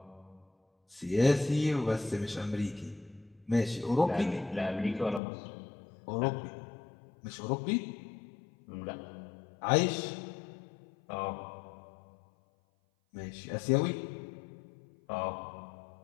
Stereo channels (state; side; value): drops out; right; at 5.2 s